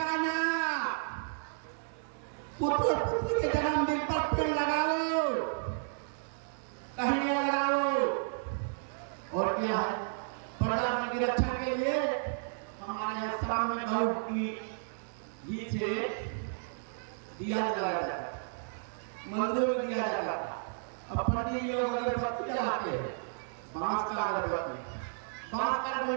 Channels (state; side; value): silent; left; 56 dB below the other